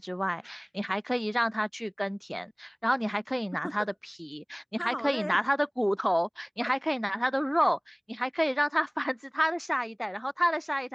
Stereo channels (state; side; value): identical; both; correlation 1.00